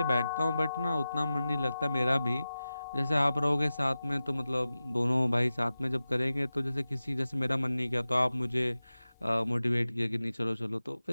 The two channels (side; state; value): both; inverted; correlation -0.95